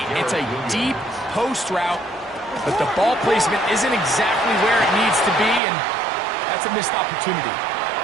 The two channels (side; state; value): left; drops out; at 5.6 s